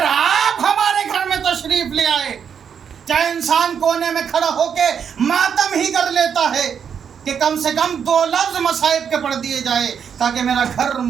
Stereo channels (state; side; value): quieter; left; 7.4 dB